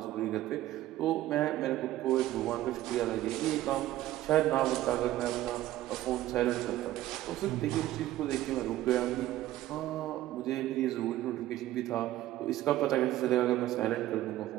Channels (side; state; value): left; quieter; 14.8 dB